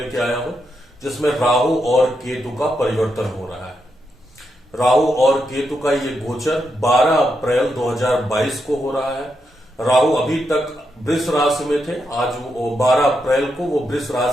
आया हूं जिसमें राहु और केतु का परिवर्तन हो रहा है। राहु और केतु का ये गोचर 12 अप्रैल 2022 को हो रहा है। राहु अभी तक वृष राशि में थे, आज वो 12 अप्रैल को वो वृष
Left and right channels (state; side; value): normal; both; correlation 0.83